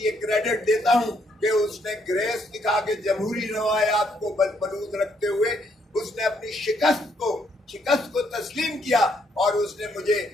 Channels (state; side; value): normal; both; correlation 0.72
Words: یہ کریڈٹ دیتا ہوں کہ اس نے گریس دکھا کے جمہوری روایات کو بلود رکھتے ہوئے اس نے اپنی شکست کو تسلیم کیا اور اس نے مجھے